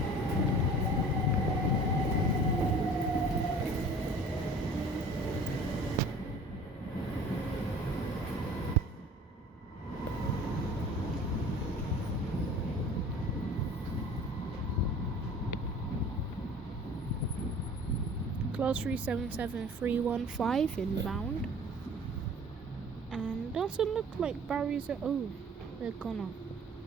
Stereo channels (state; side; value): normal; both; correlation 0.46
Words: Class 377315 inbound. And doesn't look like barriers are. Oh, they're gone.